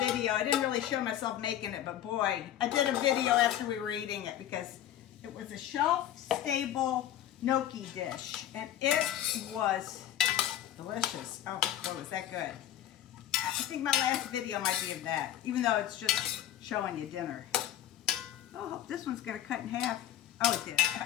I didn't really show myself making it, but boy, I did a video after we were eating it because it was a shelf-stable gnocchi dish, and it was delicious. Oh, boy, was that good. I think my last video might be of that, even though it's just showing you dinner. Oh, I hope this one's going to cut in half. Oh, it did.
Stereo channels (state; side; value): quieter; right; 11.9 dB